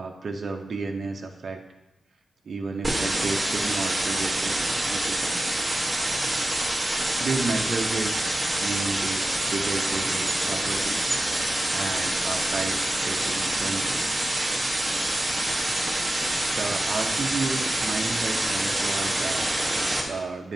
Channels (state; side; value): normal; both; correlation 0.93